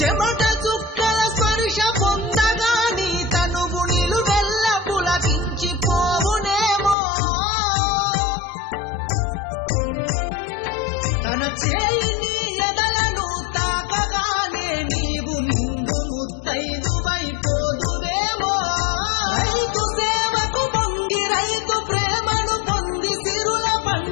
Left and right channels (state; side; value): drops out; right; at 7.0 s